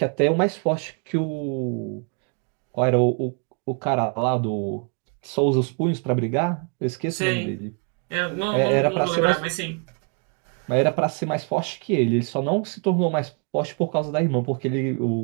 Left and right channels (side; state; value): left; quieter; 37.6 dB